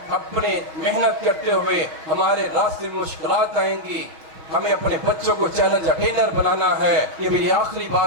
اپنے محنت کرتے ہوئے ہمارے راستے میں مشکلات آئیں گی. ہمیں اپنے بچوں کو چیلنج اٹینر بنانا ہے. یہ میری آخری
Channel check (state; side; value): late; left; 6.3 ms